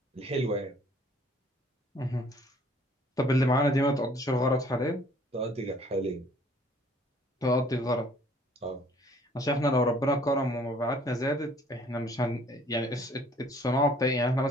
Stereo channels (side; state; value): both; normal; correlation 0.57